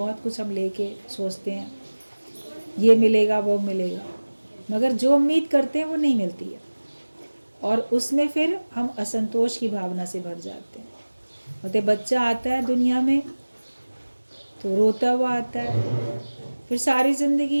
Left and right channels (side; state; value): both; inverted; correlation -1.00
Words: कुछ हम लेके सोचते हैं ये मिलेगा वो मिलेगा, मगर जो उम्मीद करते हैं वो नहीं मिलती है, और उसमें फिर हम असंतोष की भावना से भर जाते हैं। और बच्चा आता है दुनिया में तो रोता हुआ आता है, फिर सारी ज़िंदगी